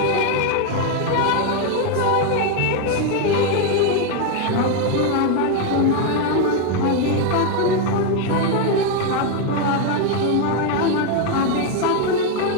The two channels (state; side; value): different; both; correlation 0.01